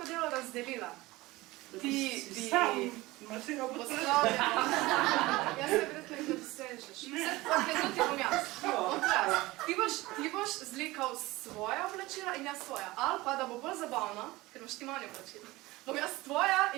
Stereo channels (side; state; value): left; quieter; 20.0 dB